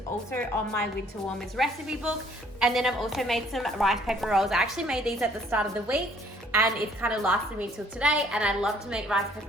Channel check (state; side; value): normal; both; correlation 0.60